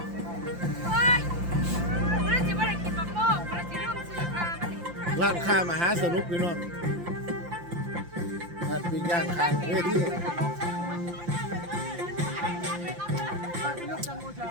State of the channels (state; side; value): late; left; 5.8 ms